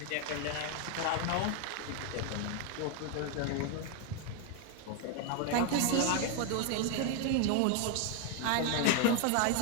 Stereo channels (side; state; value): both; different; correlation 0.01